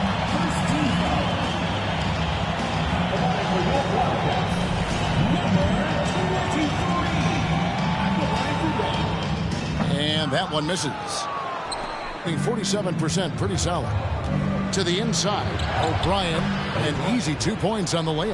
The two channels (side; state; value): both; identical; correlation 1.00